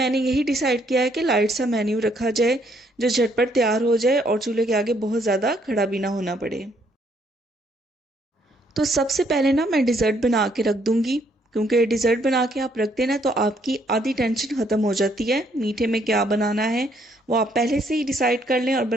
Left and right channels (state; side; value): normal; both; correlation 0.69